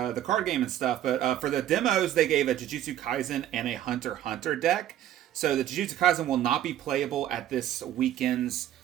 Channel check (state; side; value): quieter; left; 11.9 dB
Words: card game and stuff. But for the demos, they gave a Jujutsu Kaisen and a Hunter deck. So the Jujutsu Kaisen will not be playable at this weekend's